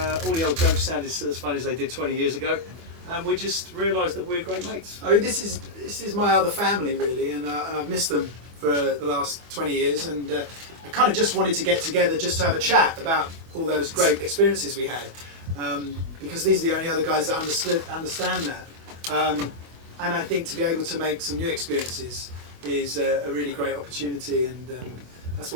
all the old jokes sounded as funny as they did 20 years ago, and we just realised that we're great mates. I mean, this is my other family really, and I've missed them for the last 20 years, and I kind of just wanted to get together just to have a chat about all those great experiences we had, because these are the only other guys that understand that, and I think to be able to make some new experiences is a really great opportunity, and that's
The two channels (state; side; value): late; left; 24 ms